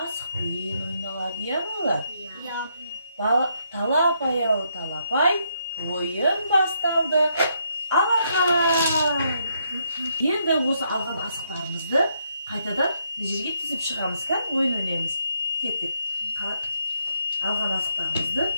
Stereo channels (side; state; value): both; inverted; correlation -0.76